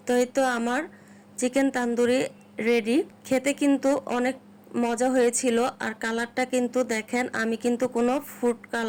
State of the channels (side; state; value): both; identical; correlation 1.00